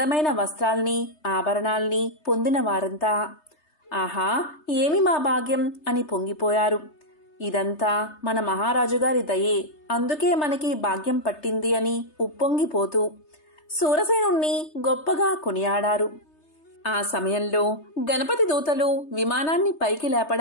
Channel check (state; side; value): late; right; 3.3 ms